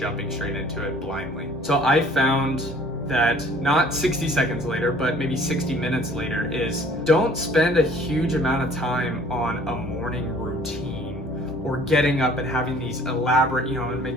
straight into it blindly. So I found that not 60 seconds later, but maybe 60 minutes later, is don't spend a huge amount of time on a morning routine or getting up and having these elaborate, I'm gonna make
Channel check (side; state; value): both; normal; correlation 0.54